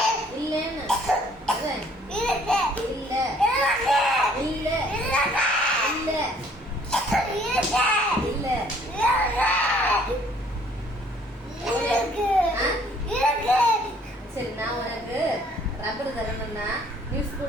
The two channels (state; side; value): normal; both; correlation 0.60